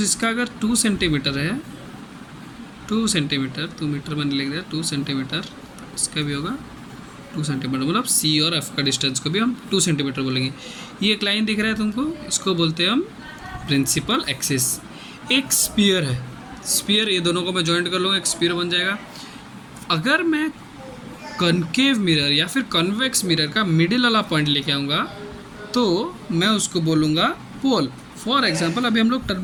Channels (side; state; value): both; identical; correlation 1.00